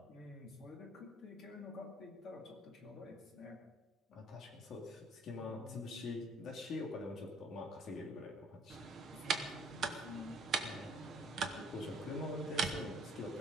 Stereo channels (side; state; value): both; normal; correlation 0.60